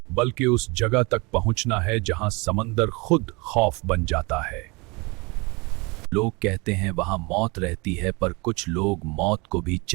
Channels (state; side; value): quieter; left; 27.2 dB